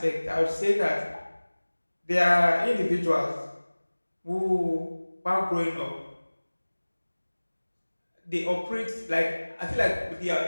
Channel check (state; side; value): inverted; both; correlation -1.00